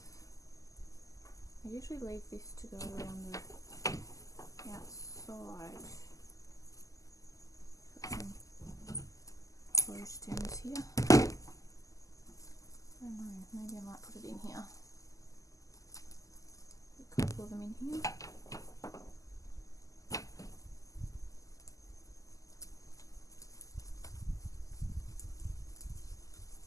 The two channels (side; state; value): right; late; 0.16 ms